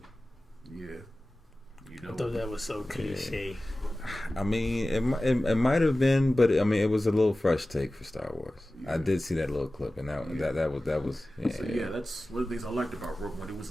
Yeah, you know. I thought that was so cliche. I mean, it might have been, but I mean, it was a little fresh take for Star Wars. Yeah. I did see that little clip, and that was. Yeah, so, that's one of the things I liked about Rogue One. It was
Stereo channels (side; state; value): both; normal; correlation 0.96